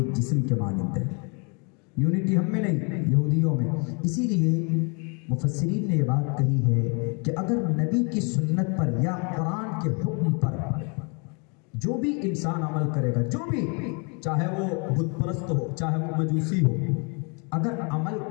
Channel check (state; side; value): quieter; right; 34.6 dB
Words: جسم کے مانند ہے۔ یونٹی ہم میں نہیں، یہودیوں میں۔ اسی لیے مفسرین نے یہ بات کہی ہے کہ اگر نبی کی سنت پر یا قرآن کے حکم پر جو بھی انسان عمل کرے گا، جو بھی، چاہے وہ بت پرست ہو، چاہے وہ مجوسی ہو، اگر عمل